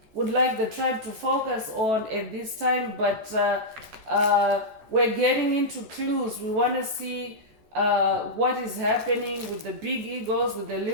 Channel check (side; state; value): left; late; 14 ms